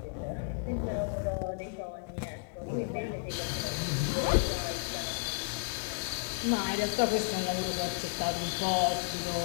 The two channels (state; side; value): silent; right; digital silence